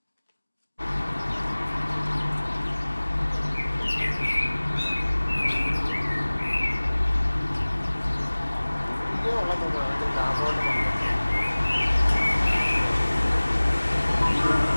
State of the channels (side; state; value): both; inverted; correlation -1.00